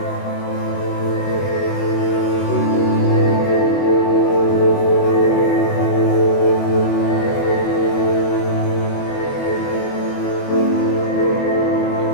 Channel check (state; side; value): late; right; 21 ms